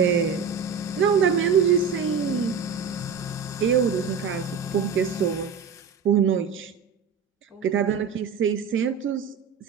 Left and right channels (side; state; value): left; quieter; 5.9 dB